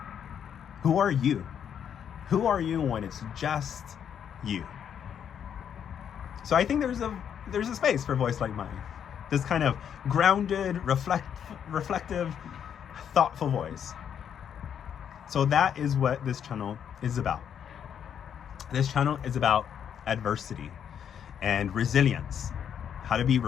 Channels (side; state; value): right; quieter; 8.5 dB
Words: Who are you? Who are you when it's just you? So I think there's a space for a voice like mine. This kind of grounded, reflective, thoughtful voice. So that is what this channel is about. This channel is about adversity and resilience, how to be